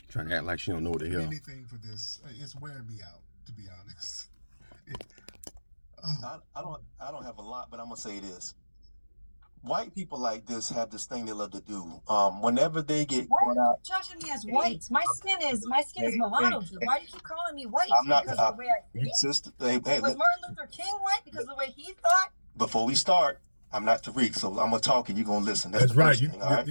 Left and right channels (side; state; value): both; inverted; correlation -1.00